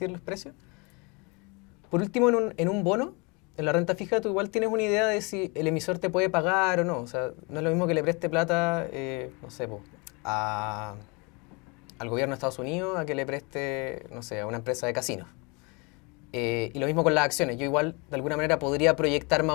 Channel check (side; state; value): right; quieter; 29.8 dB